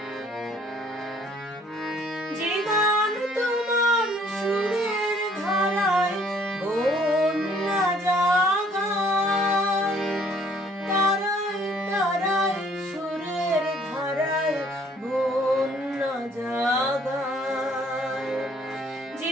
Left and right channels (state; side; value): normal; both; correlation 0.61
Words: জীবন তোমার সুরের ধারায় বন্যা জাগায়, তারায় তারায় সুরের ধারায় বন্যা জাগায়।